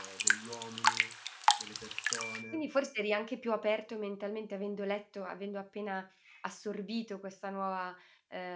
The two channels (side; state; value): both; identical; correlation 1.00